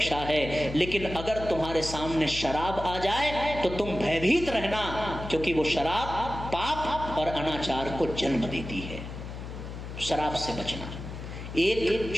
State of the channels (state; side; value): noise; left; hum, 9 dB below the sound